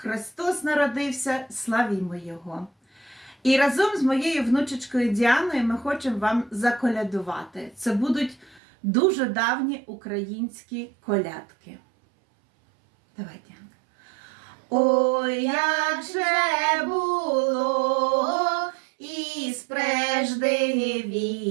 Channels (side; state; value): left; drops out; at 8.6 s